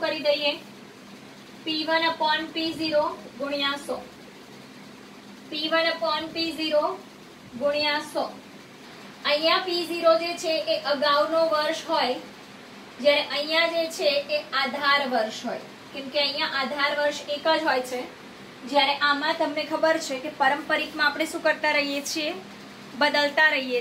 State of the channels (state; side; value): identical; both; correlation 1.00